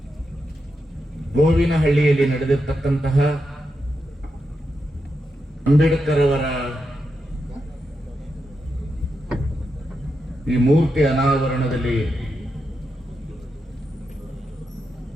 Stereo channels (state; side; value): normal; both; correlation 0.86